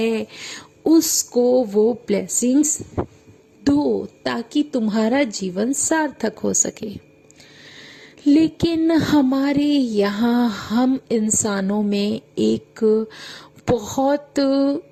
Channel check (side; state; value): both; identical; correlation 1.00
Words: उसको वो ब्लेसिंग्स दो ताकि तुम्हारा जीवन सार्थक हो सके। लेकिन हमारे यहाँ हम इंसानों में एक बहुत